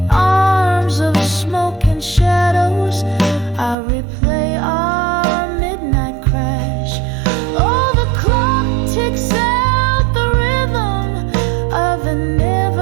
arms of smoke and shadows, I replay our midnight crash. Oh, the clock ticks out the rhythm of an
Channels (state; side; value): drops out; left; at 3.8 s